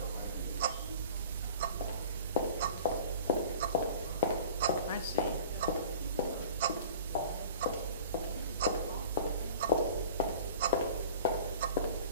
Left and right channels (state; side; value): inverted; both; correlation -0.42